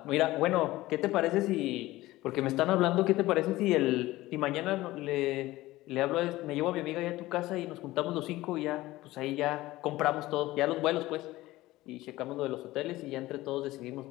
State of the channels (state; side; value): quieter; right; 17.7 dB